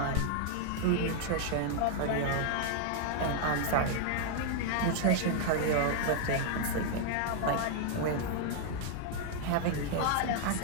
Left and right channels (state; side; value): different; both; correlation 0.00